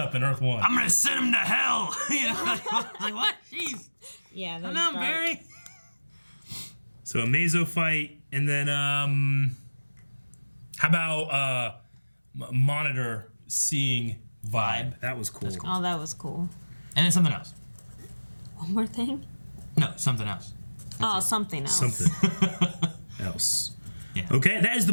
in Earth 1. I'm gonna send him to hell. You know, like what? Jeez. Yeah, Come on, Barry. So Amazo fight, and then how about Monitor seeing Vibe? That was cool. Oh, that was cool. And then something else. One more thing? No, something else. Something else. Something else. Yeah. Okay, that is the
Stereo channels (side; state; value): both; inverted; correlation -1.00